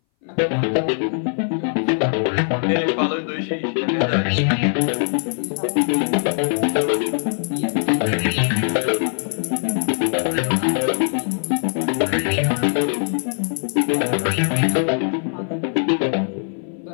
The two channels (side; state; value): right; silent; 61 dB below the other